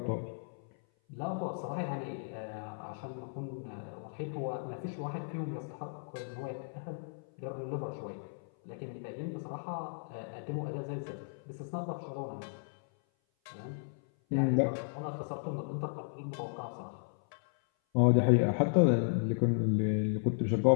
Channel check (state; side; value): silent; right; 55 dB below the other